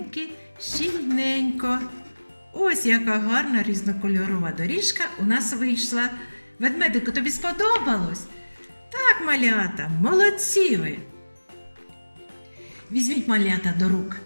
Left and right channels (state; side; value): inverted; both; correlation -1.00